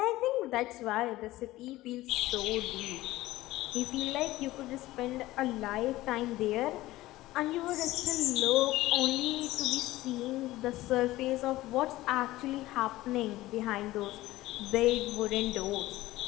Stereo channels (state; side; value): quieter; right; 17.1 dB